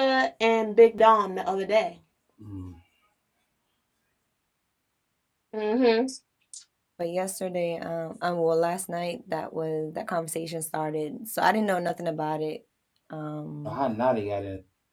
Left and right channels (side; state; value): both; identical; correlation 1.00